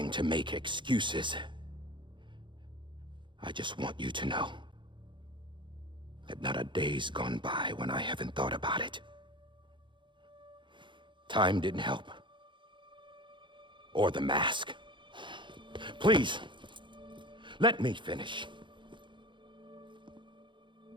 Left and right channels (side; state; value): left; late; 0.23 ms